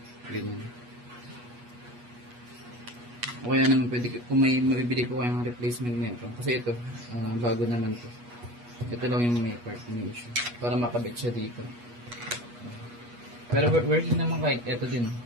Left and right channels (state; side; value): late; left; 8.3 ms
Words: O kaya naman pwede, kung may mabibili po kayong replacement nito. Kasi ito, bago naman ito. Ito lang yung may part, may issue. Para makabit siya dito. Pero working naman kahit ito din.